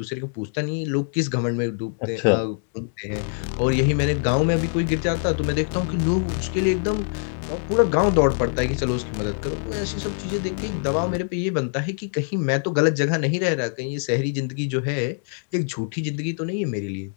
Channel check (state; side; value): silent; right; 63 dB below the other